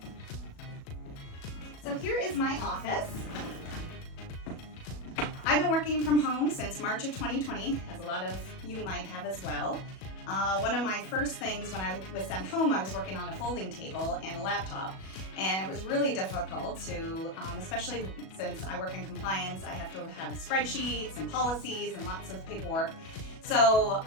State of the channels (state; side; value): late; right; 37 ms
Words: So here is my office. I've been working from home since March of 2020, as a lot of you might have as well. One of my first things when I was sent home, I was working on a folding table and a laptop, and it was really difficult to, especially since I work in compliance, I have to have spreadsheets and policies and lots of paperwork. So